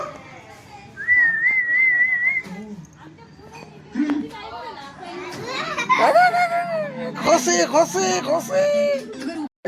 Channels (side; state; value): both; identical; correlation 1.00